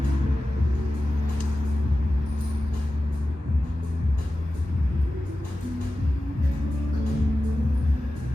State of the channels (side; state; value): both; normal; correlation 0.94